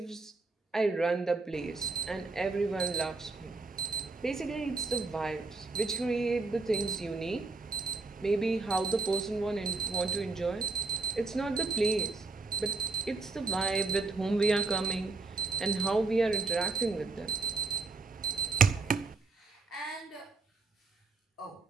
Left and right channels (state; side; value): quieter; left; 3.7 dB